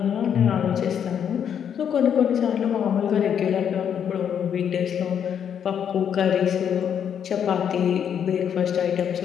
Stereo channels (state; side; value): quieter; right; 8.5 dB